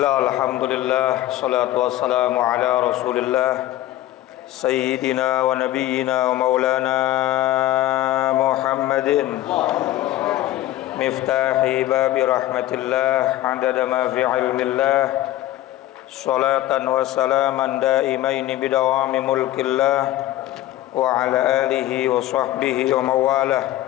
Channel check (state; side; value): quieter; right; 14.8 dB